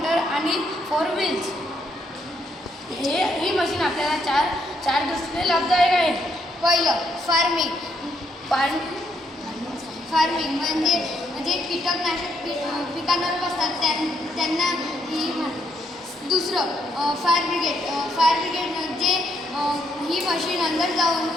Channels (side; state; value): both; normal; correlation 0.74